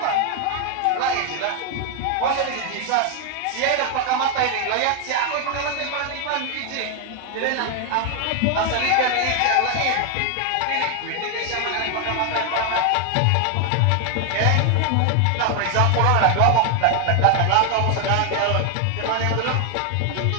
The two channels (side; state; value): both; different; correlation 0.01